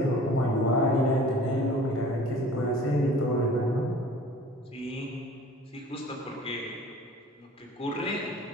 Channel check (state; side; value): normal; both; correlation 0.46